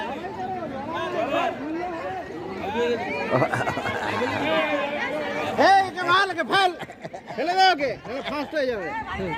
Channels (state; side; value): identical; both; correlation 1.00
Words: ফেলে দাও ওকে, ফার্স্ট হয়ে যাবে।